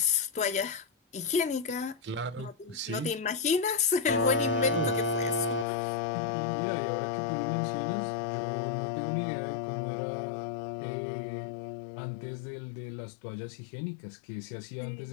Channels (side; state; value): right; drops out; at 5.7 s